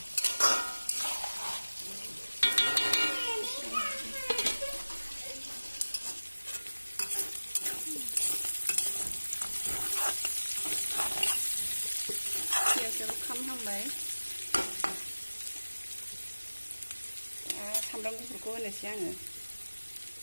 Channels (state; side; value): inverted; both; correlation -1.00